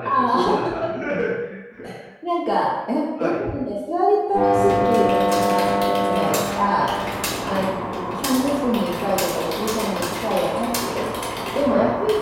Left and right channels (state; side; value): identical; both; correlation 1.00